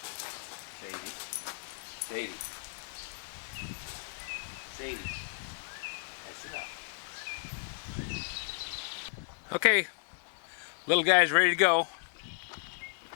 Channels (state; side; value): silent; right; digital silence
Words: Sadie. That's enough. Okay, little guy's ready to go.